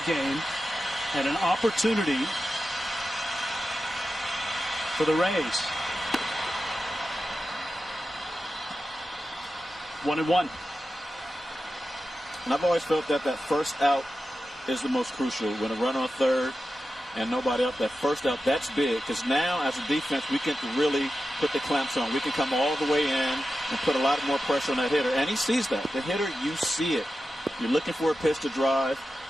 game, and an opportunity for the Rays. 1-1. And I've always felt that first out is the most crucial. When a runner on third and nobody out, that first out, that's big. Because now, as a defense, we can really put the clamps on. We can come all the way in and put a lot more pressure on that hitter. And he sees that. The hitter, you see it. You're looking for a pitch to drive,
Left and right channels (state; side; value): normal; both; correlation 0.92